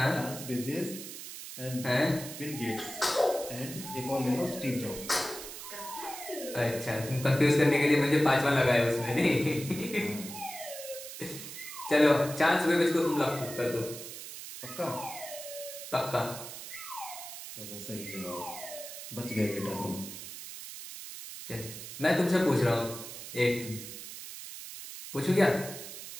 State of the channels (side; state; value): right; noise; hiss, 11 dB below the sound